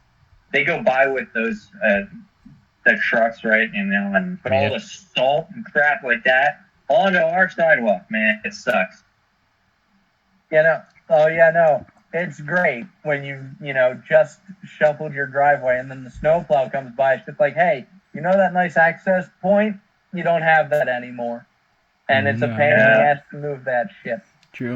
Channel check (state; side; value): identical; both; correlation 1.00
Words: go by with those the trucks, right? And put all the salt and crap like that onto our sidewalk. Man, it sucks. It's great when you just shoveled your driveway and then the snowplow comes by. It's just like, hey, you know that nice access point? You don't have that anymore. And it's a pain in the ass to move that shit.